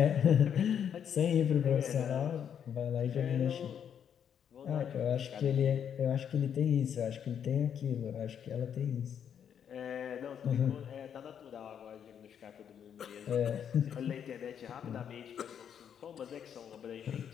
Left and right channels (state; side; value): quieter; right; 8.4 dB